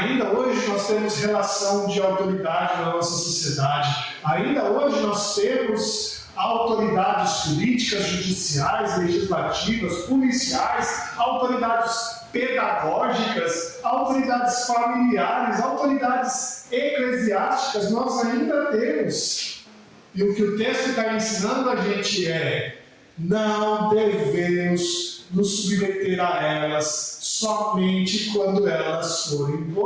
hoje nós temos relação de autoridade na nossa sociedade. Ainda hoje nós temos autoridades políticas, judiciais, legislativas, policiais, autoridades pedagógicas, autoridades familiares, autoridades eclesiásticas. Nós ainda temos. E o que o texto está ensinando a gente é: não devemos nos submeter a elas somente quando elas forem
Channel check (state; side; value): identical; both; correlation 1.00